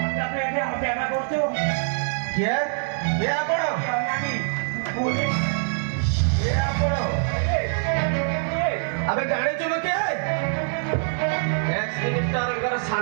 अबे जाने चुनो क्या मिनिस्टर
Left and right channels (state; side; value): silent; left; digital silence